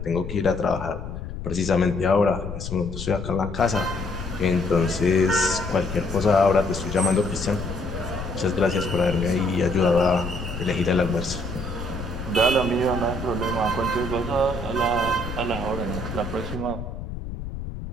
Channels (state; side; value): noise; left; rumble, 8 dB below the sound